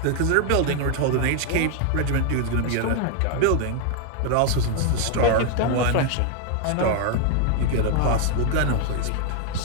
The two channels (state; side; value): different; both; correlation 0.00